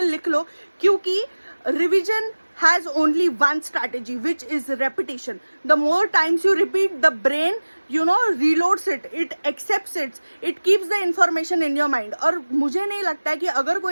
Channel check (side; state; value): both; inverted; correlation -1.00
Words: लो, क्योंकि revision has only one strategy, which is repetition. The more times you repeat, the brain, reloads it, it accepts it, it keeps the information in your mind. और मुझे नहीं लगता है कि अगर